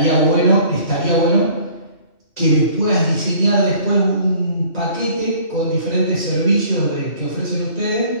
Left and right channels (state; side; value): late; right; 2.7 ms